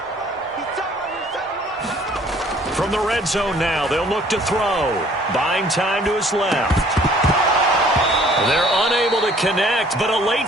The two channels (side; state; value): both; normal; correlation 0.57